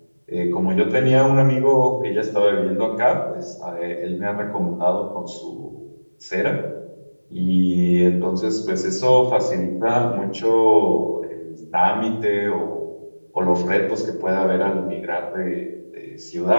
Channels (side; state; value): both; inverted; correlation -1.00